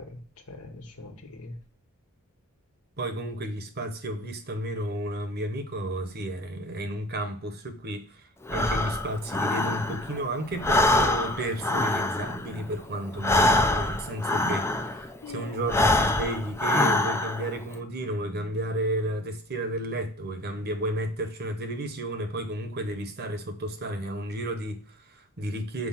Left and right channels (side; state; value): both; normal; correlation 0.44